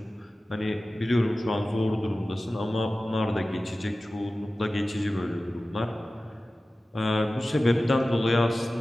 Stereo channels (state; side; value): normal; both; correlation 0.96